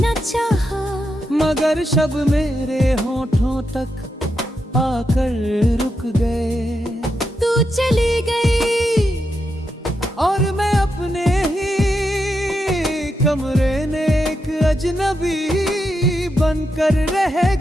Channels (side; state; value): both; normal; correlation 0.84